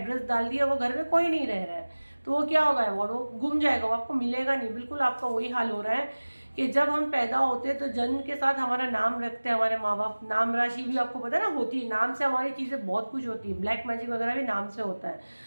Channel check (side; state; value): both; inverted; correlation -1.00